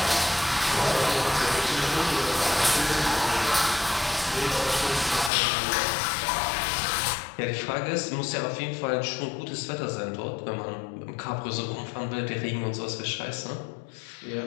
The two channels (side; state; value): right; drops out; at 5.3 s